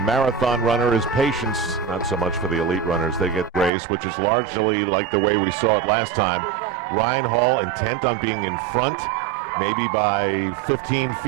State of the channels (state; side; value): drops out; left; at 3.7 s